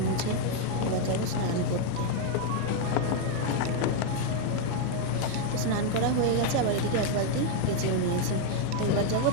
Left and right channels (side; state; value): both; different; correlation 0.00